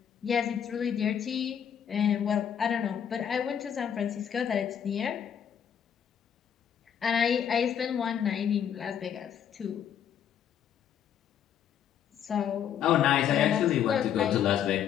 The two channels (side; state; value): right; quieter; 8.9 dB